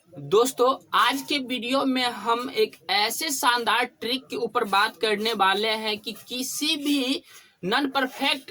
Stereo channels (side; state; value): both; identical; correlation 1.00